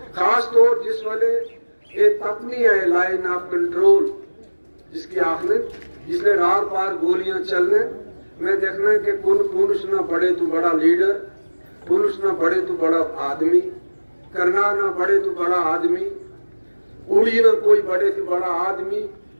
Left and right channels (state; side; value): inverted; both; correlation -1.00